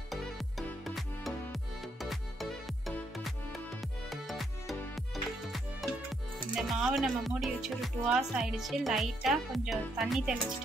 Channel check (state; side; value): normal; both; correlation 0.75